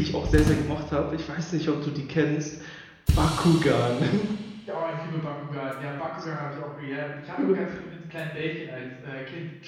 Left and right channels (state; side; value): identical; both; correlation 1.00